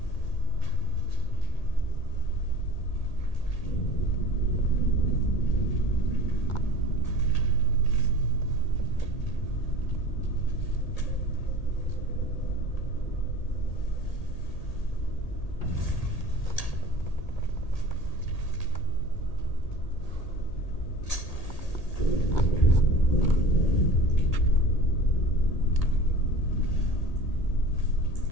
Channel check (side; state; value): right; late; 1.8 ms